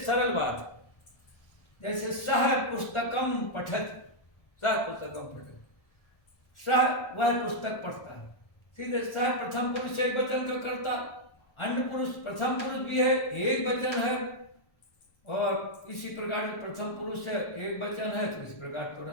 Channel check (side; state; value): right; late; 1.4 ms